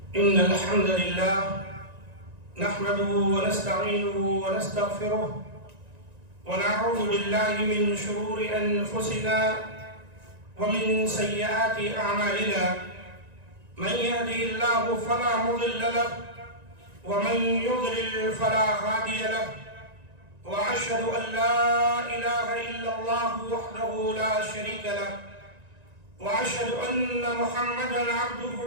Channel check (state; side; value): late; left; 1.9 ms